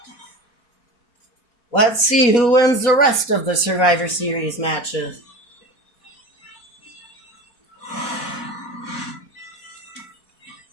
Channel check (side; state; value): right; late; 4.1 ms